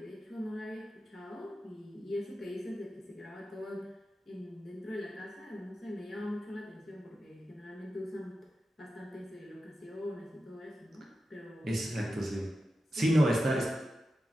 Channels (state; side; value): normal; both; correlation 0.91